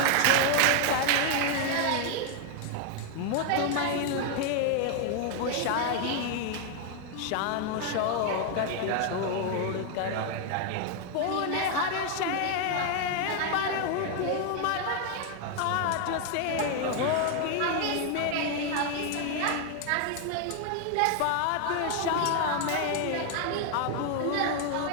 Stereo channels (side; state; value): both; different; correlation 0.00